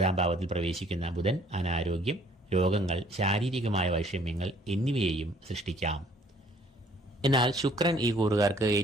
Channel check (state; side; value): normal; both; correlation 0.59